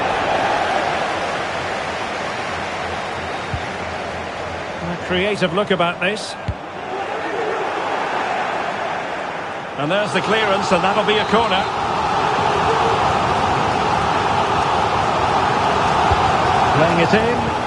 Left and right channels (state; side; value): identical; both; correlation 1.00